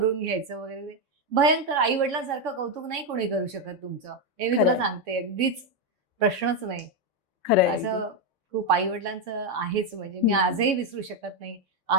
घ्यायचं वगैरे. भयंकर. आई वडिलांसारखं कौतुक नाही कोणी करू शकत तुमचं, हे मी तुला सांगते. अगदीच प्रश्नच नाही. खरंय, असं खूप आई वडिलांचं आहेच. म्हणजे मी आजही विसरू शकत नाही.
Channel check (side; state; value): left; late; 3.6 ms